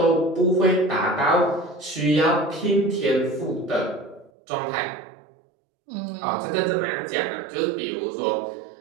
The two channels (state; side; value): drops out; left; at 4.3 s